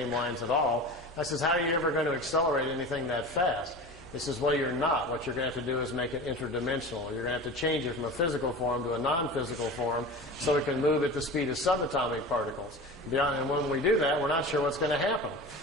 lines at all. I says, how are you ever going to accelerate anything that fast? He says, well, you're not. What you're going to have to do is make it interdimensional. You're going to have to change it from a physical form to a non-physical form so it can move at the speed of subatomic particles. And when we do that, we're not sure what's going to happen.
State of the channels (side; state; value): both; normal; correlation 0.33